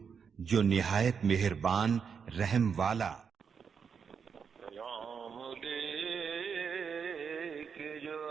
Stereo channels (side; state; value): left; quieter; 6.5 dB